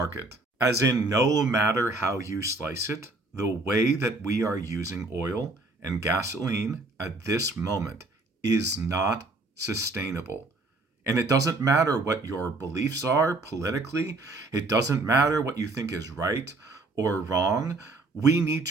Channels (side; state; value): left; quieter; 3.1 dB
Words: As in, no matter how you slice it, the way that we are using oil and gasoline at this moment is not sustainable. And it doesn't matter what your beliefs are politically, it doesn't matter what you think is right or wrong. We need